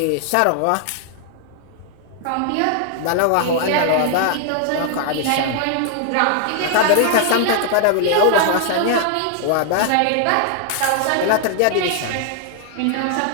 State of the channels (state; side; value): different; both; correlation 0.00